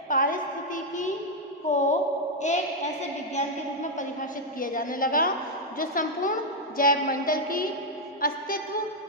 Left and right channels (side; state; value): both; normal; correlation 0.00